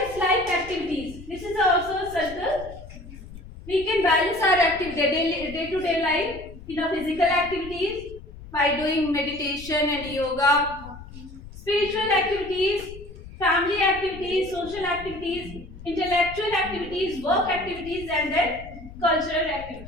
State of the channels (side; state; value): left; noise; rumble, 15 dB below the sound